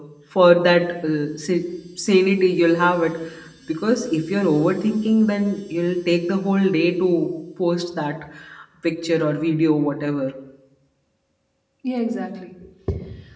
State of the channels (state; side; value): identical; both; correlation 1.00